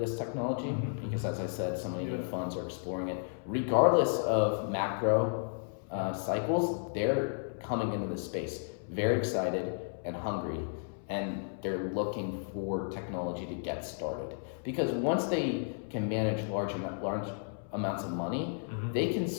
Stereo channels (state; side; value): silent; right; 56 dB below the other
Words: technology because, as I said, so many new funds are exploring it. Regardless of macro cycles, they're coming into this space very excited and hungry, and they're looking for technology to get started. Because once they can manage large amounts of money, they can